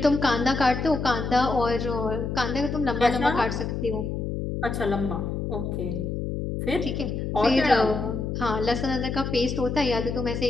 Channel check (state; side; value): noise; left; hum, 3 dB below the sound